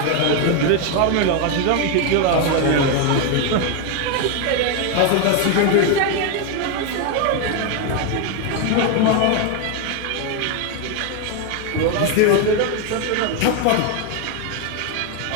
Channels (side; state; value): both; different; correlation 0.01